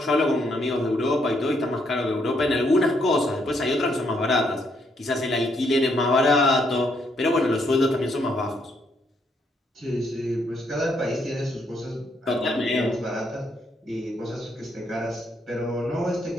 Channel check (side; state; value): both; normal; correlation 0.74